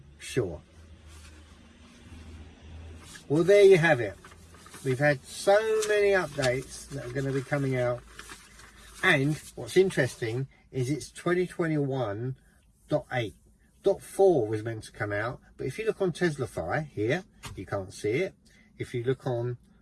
sure. Well, there you have it. We've had so many updates that are going to be coming out. And what's interesting is it's 2021.8. 0.4 was meant to come out. But if you look on Teslafy here, you can't see it. If you look on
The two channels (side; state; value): both; identical; correlation 1.00